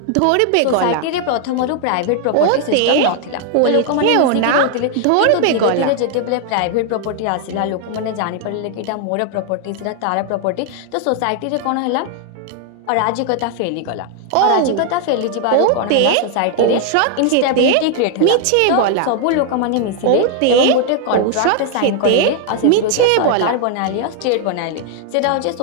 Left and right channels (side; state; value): both; different; correlation 0.00